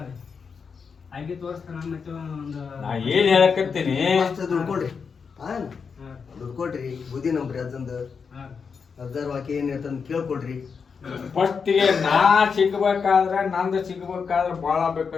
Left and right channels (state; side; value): quieter; right; 5.8 dB